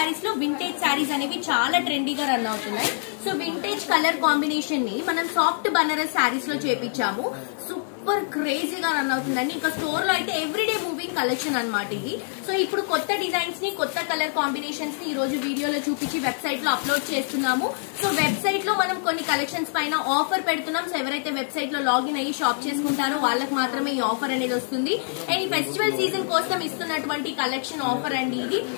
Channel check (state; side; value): silent; right; digital silence